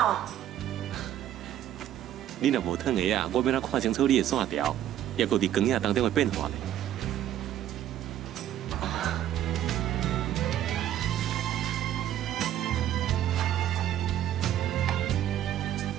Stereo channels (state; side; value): quieter; left; 11.6 dB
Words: 你若无烫鞋啊，我要哪看清楚你的线条，也搁伫光影当中的变化呢？